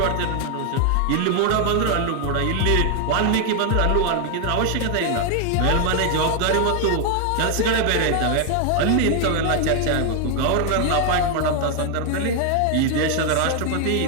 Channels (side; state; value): both; different; correlation 0.01